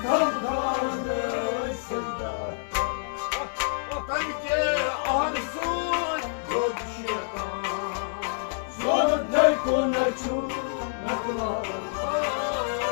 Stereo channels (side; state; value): right; silent; digital silence